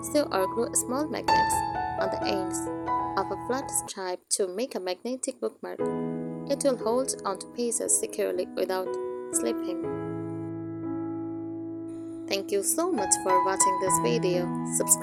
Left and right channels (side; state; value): both; identical; correlation 1.00